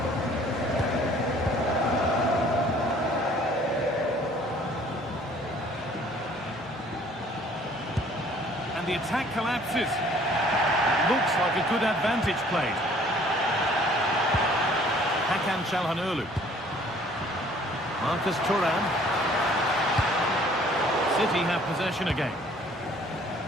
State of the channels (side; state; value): both; normal; correlation 0.56